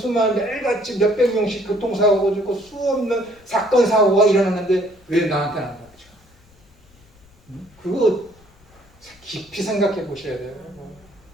매일같이 몇백 명씩 교통사고가 죽고 수없는 사건 사고가 일어나는데 왜 나한테는 안 닥쳐? 그거 깊이 생각해 보셔야 돼요.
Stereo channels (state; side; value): noise; left; rumble, 29 dB below the sound